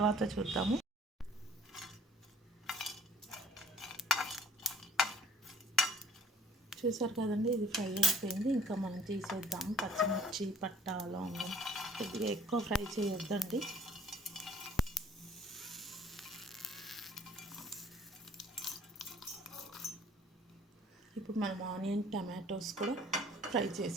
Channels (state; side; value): normal; both; correlation 0.53